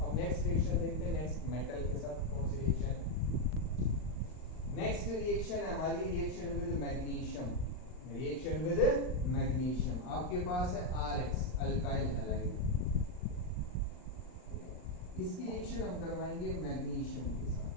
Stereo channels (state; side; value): late; right; 39 ms